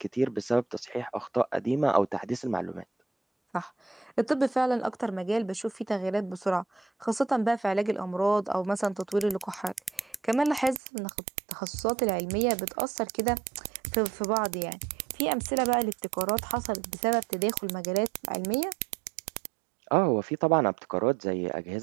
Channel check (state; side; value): drops out; left; at 10.8 s